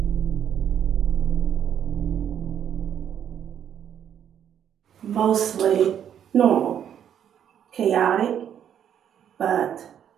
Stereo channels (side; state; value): left; quieter; 9.3 dB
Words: Mostly normal, chaotic, but